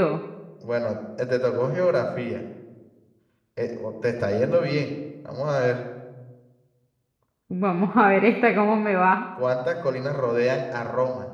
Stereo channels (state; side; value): identical; both; correlation 1.00